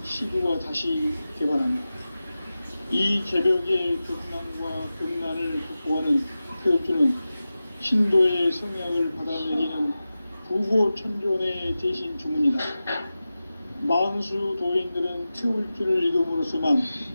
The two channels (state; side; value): inverted; both; correlation -0.94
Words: 시구가 다시 개발합니다. 이 개벽의 극난과 극난을 극복하는 태울주는 신도의 성약을 받아내리는 부고천존의 대신 주문이다. 망수 도인들은 태울주를 이름으로서만